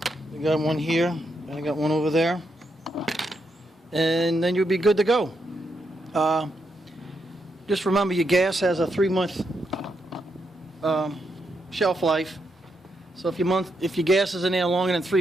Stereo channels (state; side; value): normal; both; correlation 0.81